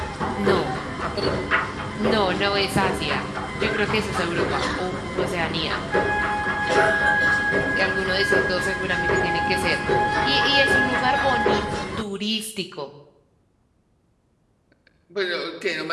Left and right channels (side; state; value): both; identical; correlation 1.00